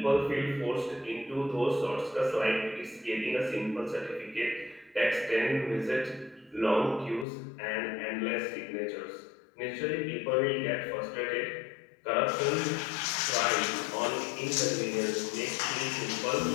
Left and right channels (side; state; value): right; drops out; at 7.2 s